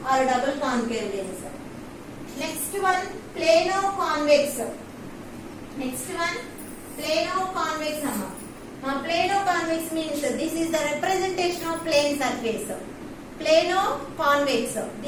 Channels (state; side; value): identical; both; correlation 1.00